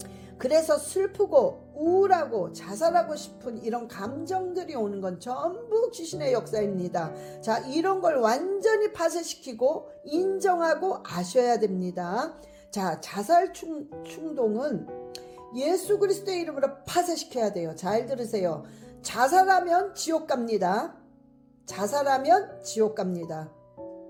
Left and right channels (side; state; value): both; identical; correlation 1.00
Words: 그래서 슬프고 우울하고 자살하고 싶은 이런 감정들이 오는 건 전부 귀신의 역사입니다. 자, 이런 걸 완전히 파쇄시키고 인정하고 아셔야 됩니다. 자, 자살 충동은 예수 그리스도의 이름으로 파쇄시켜야 돼요. 잘 들으세요. 자살하면 지옥 갑니다.